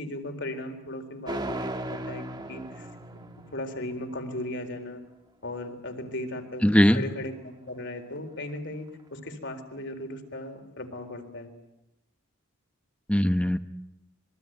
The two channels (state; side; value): normal; both; correlation 0.78